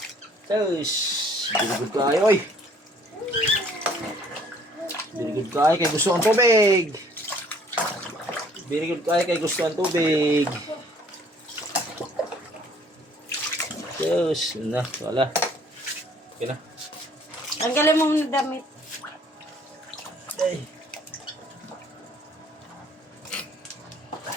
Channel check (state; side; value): normal; both; correlation 0.59